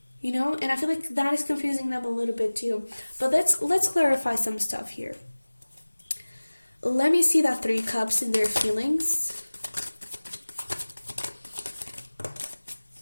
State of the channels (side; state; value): both; inverted; correlation -1.00